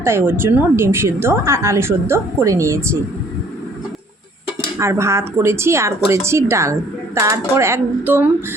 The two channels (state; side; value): normal; both; correlation 0.58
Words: তাই ওর জন্য ডিম সিদ্ধ আর আলু সিদ্ধ করে নিয়েছি। আর ভাত করেছি আর করেছি ডাল। তারপর একদম